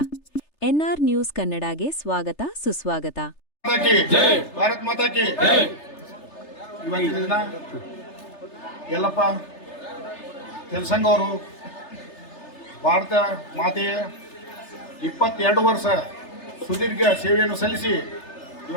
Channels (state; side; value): late; right; 3.3 ms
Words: N R news ಕನ್ನಡಗೆ ಸ್ವಾಗತ ಸುಸ್ವಾಗತ. ಭಾರತ್ ಮಾತಾ ಕಿ ಇವತ್ತಿನ ದಿನ ಯಲ್ಲಪ್ಪ ತೆಲಸಂಗ ಅವರು ಭಾರತ ಮಾತೆಯ 22 ವರ್ಷ ಸುದೀರ್ಘ ಸೇವೆಯನ್ನು ಸಲ್ಲಿಸಿ